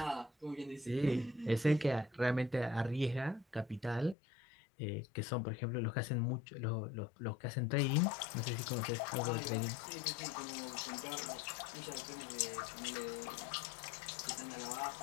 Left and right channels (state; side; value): drops out; right; at 4.2 s